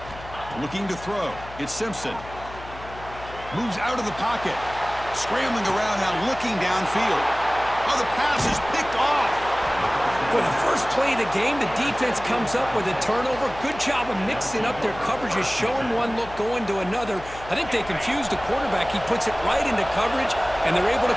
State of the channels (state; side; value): noise; left; hum, 16 dB below the sound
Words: Looking to throw. It's Simpson. Moves out of the pocket. Scrambling around now, looking downfield. Oh, the pass is picked off. For the first play of the game, the defense comes up with a turnover. Good job of mixing up their coverages, showing one look, going to another. I think they confused the quarterback. He puts it right into coverage, and they're able